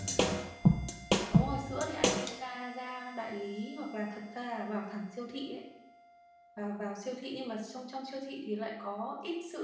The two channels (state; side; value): identical; both; correlation 1.00